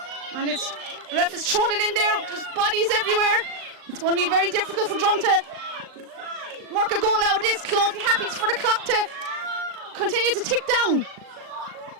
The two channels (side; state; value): left; late; 38 ms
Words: And it's ref is throwing it in there. There's bodies everywhere. It's going to be very difficult for Drum to work a goal out of this. Clonty happy for the clock to continue to tick down.